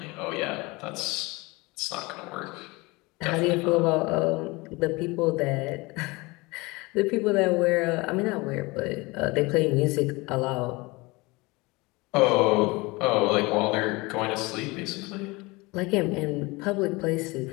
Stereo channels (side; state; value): right; quieter; 24.0 dB